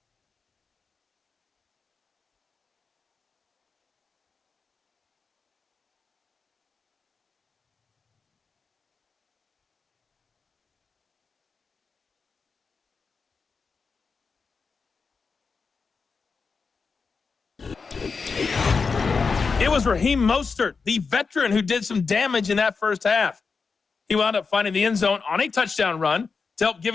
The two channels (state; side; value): quieter; right; 4.9 dB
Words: It was Raheem Mostert, the veteran, who did some damage in that first half. He wound up finding the end zone on a touchdown run to help give